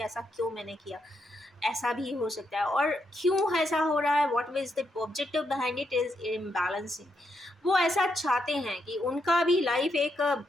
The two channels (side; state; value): both; normal; correlation 0.80